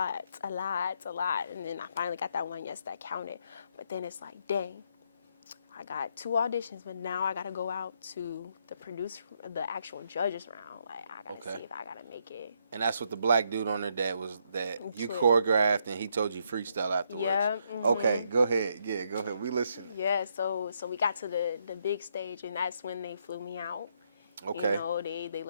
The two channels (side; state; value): both; inverted; correlation -0.75